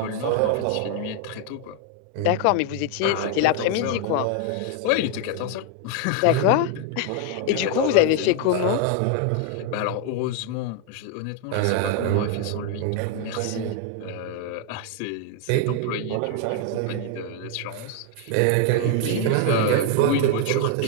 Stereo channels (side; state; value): both; different; correlation 0.00